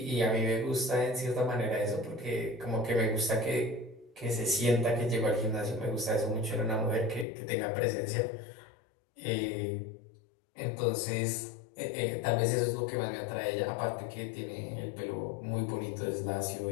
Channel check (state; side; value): drops out; right; at 7.2 s